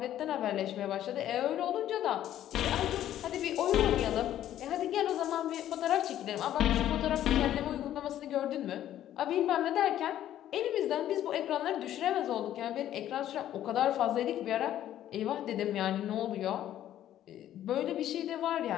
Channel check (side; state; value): right; quieter; 12.0 dB